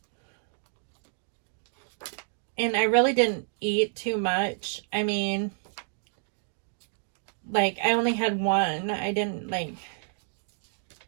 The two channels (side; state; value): left; silent; digital silence